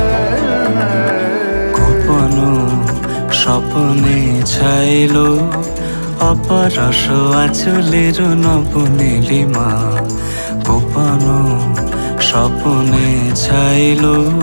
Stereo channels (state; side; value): inverted; both; correlation -1.00